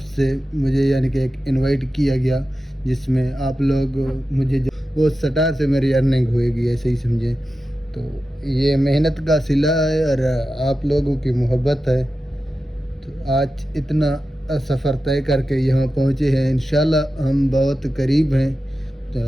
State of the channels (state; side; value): normal; both; correlation 0.92